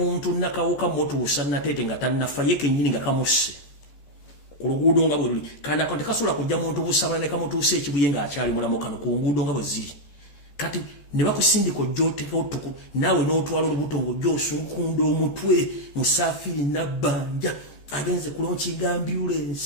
nakawuka motuusa natete nga tannafa ye kennyini nga kamusse ku luguudo nga bwe luli kana tekasobola kujja muntu busabala ne kamutuusa ekibuye nga akyali mulamu kano ku nguudo nga bwe ziri. Kati ne bakusindika ojjooteka otuku naawe n'otwala olubuto ng'ojjoosunkunda omutwe Musafiri Nabbanja agenze kulonkinga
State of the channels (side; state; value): right; late; 14 ms